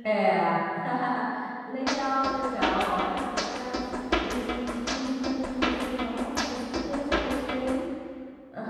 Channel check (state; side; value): identical; both; correlation 1.00